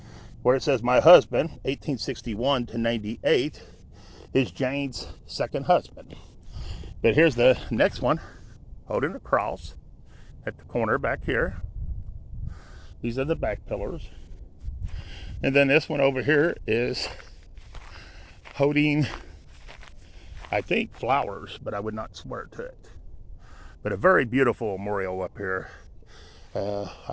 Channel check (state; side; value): identical; both; correlation 1.00